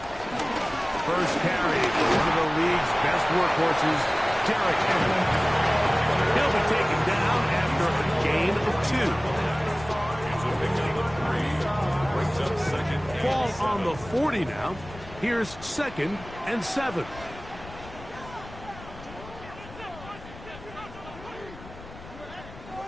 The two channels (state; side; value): noise; left; rumble, 17 dB below the sound